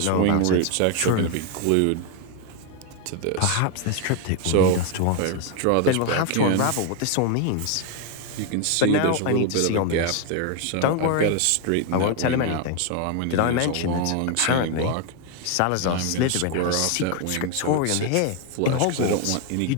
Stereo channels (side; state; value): both; different; correlation 0.01